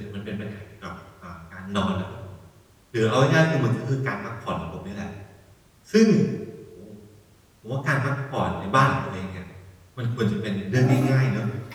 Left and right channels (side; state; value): both; identical; correlation 1.00